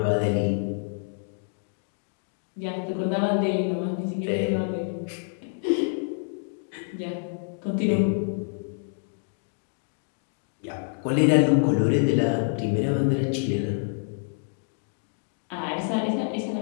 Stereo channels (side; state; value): right; silent; digital silence